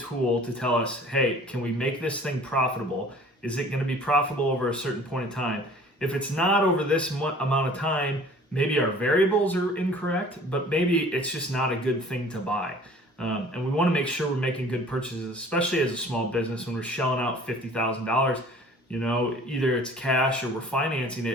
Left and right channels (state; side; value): normal; both; correlation 0.49